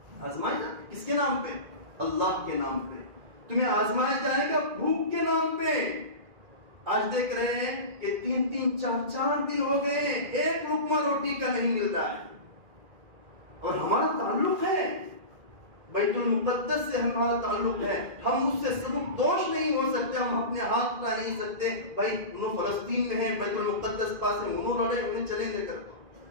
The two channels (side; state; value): left; late; 2.2 ms